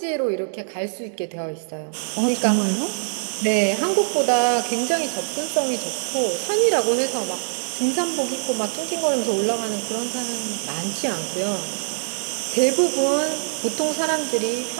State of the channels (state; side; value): silent; left; 63 dB below the other